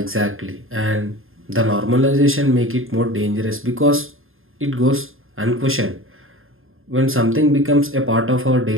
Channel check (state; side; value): late; left; 0.60 ms